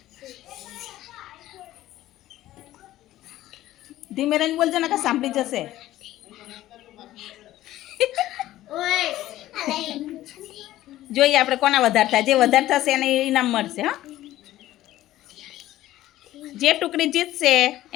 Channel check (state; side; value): quieter; right; 14.7 dB